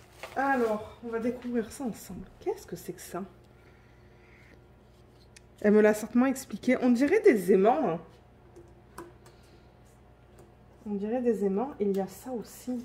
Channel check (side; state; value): both; identical; correlation 1.00